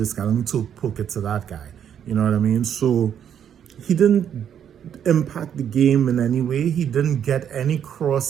guy, let me poke it to that guy. You know what I mean? So he didn't impact the game in any way. He didn't get any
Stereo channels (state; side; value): quieter; left; 9.0 dB